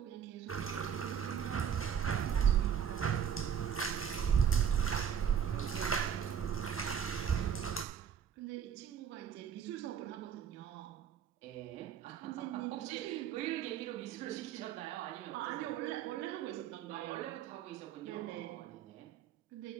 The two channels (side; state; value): left; quieter; 8.4 dB